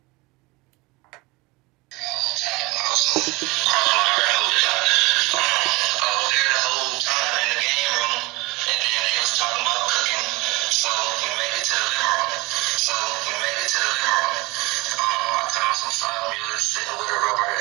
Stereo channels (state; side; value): quieter; left; 23.7 dB